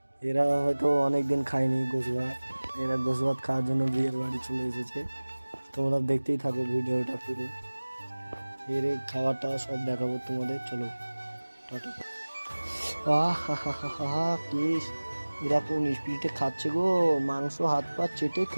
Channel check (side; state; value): both; inverted; correlation -1.00